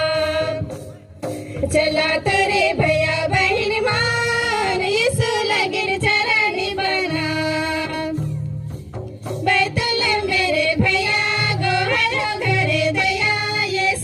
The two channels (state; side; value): identical; both; correlation 1.00